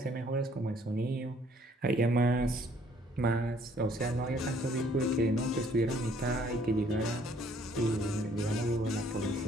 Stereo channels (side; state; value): both; normal; correlation 0.62